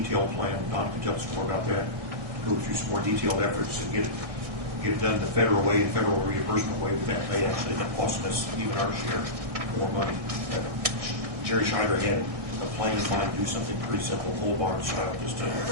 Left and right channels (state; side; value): late; left; 1.6 ms